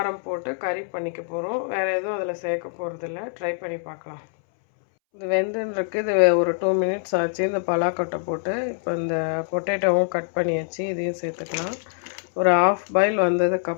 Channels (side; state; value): right; silent; 62 dB below the other